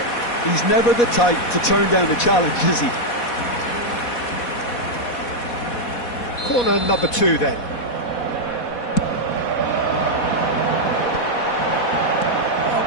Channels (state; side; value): late; right; 4.1 ms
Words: He's never the type to turn down a challenge, is he? Corner number 2 then. Oh,